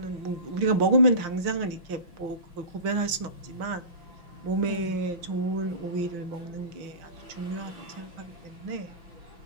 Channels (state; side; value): late; left; 5.8 ms